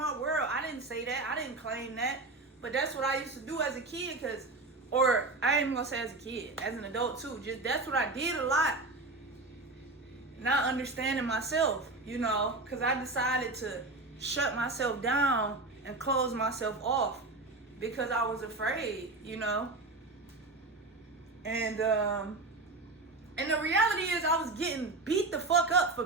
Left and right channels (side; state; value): left; quieter; 3.2 dB